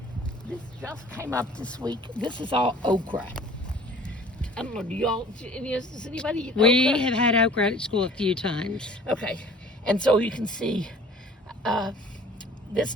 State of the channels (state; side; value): normal; both; correlation 0.48